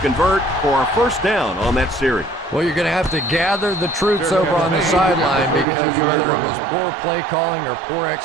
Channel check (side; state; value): left; drops out; at 5.7 s